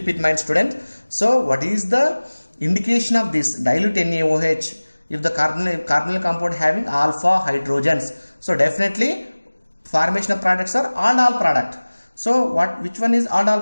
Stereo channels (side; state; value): both; inverted; correlation -1.00